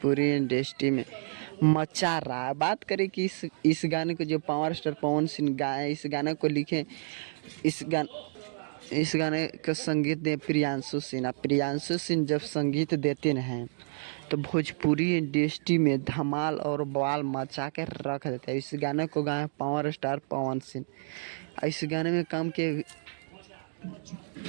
इंडस्ट्री में मचा रहा है। बात करें कि इस गाने को जो पावर स्टार पवन सिंह गाए, इस गाने को लिखे, इस गाने का संगीत दे प्रियांशु सिन्हा। प्रियांशु सिंह जब संगीत देते हैं तो भोजपुरी इंडस्ट्री में धमाल और बवाल मचा के रख देते हैं। इस गाने को गाए पावर स्टार पवन सिंह। इस गाने में काम के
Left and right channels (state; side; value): silent; left; digital silence